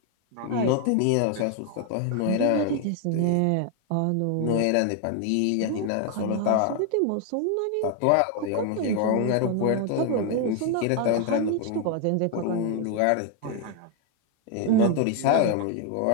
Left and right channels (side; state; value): both; different; correlation 0.01